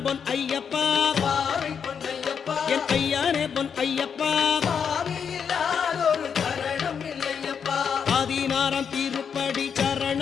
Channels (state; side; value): quieter; right; 7.0 dB